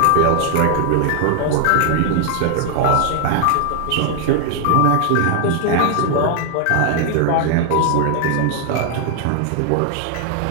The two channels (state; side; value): different; both; correlation 0.00